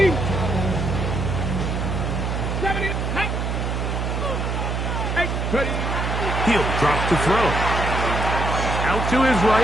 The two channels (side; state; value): right; noise; hum, 1 dB below the sound